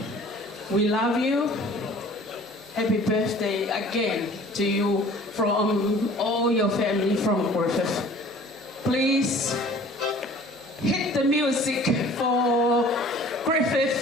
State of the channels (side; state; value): both; normal; correlation 0.49